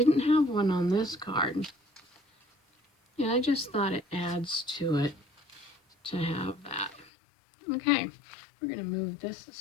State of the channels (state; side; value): drops out; right; at 7.1 s